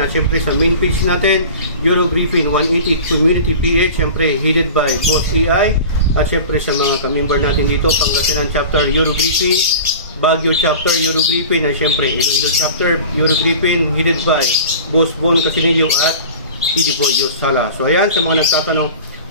At syempre sa main page natin, Euro Griffin 180 Community PH, syempre headed by Boss PI. At syempre sa mga ka-member natin dito, Pangasinan Chapter Euro Griffin, Baguio Chapter Euro Griffin, at syempre Iloilo Chapter Euro Griffin headed by Boss Bon Casinillo at Idi Boy Yosala. So ayan, sa mga nagtatanong,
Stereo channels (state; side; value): inverted; both; correlation -0.37